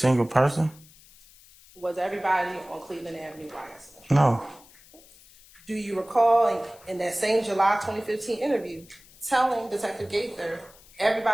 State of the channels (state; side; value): noise; left; hiss, 25 dB below the sound